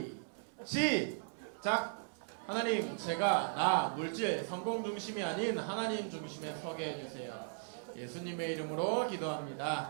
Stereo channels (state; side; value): silent; left; 53 dB below the other